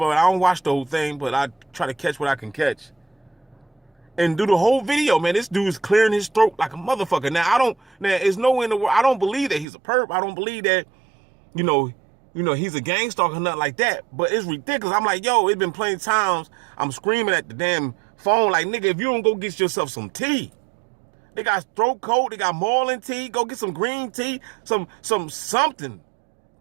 I don't watch the whole thing, but I try to catch what I can catch. And do the whole video, man. This dude's clearing his throat like a motherfucker. Now there's no way in the world. I don't believe that he's a perp. I don't believe that, you know, he's a gang stalker or nothing like that. But it's ridiculous. I'm like, yo, it's been plenty of times I'm screaming at the damn phone like, nigga, if you don't go get yourself some tea. They got throat coat, they got Marlin tea, go get some green tea, something.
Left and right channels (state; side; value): drops out; left; at 9.7 s